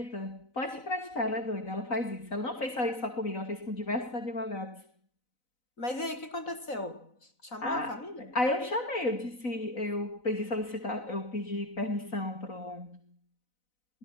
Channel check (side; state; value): right; late; 4.0 ms